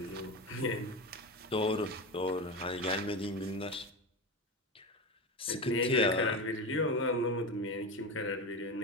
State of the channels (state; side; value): normal; both; correlation 0.21